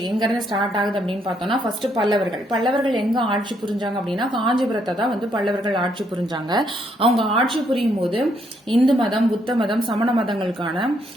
எங்கேருந்து ஸ்டார்ட் ஆகுது அப்படின்னு பார்த்தோம்னா, ஃபர்ஸ்ட் பல்லவர்கள் எங்கே ஆட்சி புரிஞ்சாங்க அப்படின்னா காஞ்சிபுரத்தை தான் பல்லவர்கள் ஆட்சி புரிஞ்சாங்க. அவங்க ஆட்சி புரியும் போது இந்து மதம், புத்த மதம், சமண மதங்களுக்கான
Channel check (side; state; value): both; normal; correlation 0.73